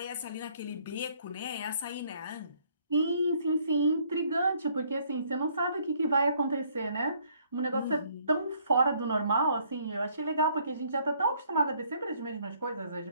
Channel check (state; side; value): inverted; both; correlation -0.64